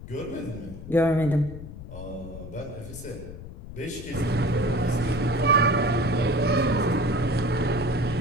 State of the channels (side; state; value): left; noise; rumble, 13 dB below the sound